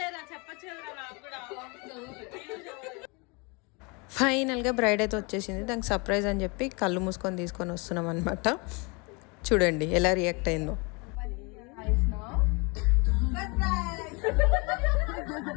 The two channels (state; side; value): quieter; right; 29.9 dB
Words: ఫైనల్గా బ్రైడ్ అయితే వచ్చేసింది. దానికి సర్ప్రైజ్ అని చెప్పి కళ్ళు మూసుకొని తీసుకొని వస్తున్నాం అనమాట. చూడండి ఎలా రియాక్ట్ అయిందో.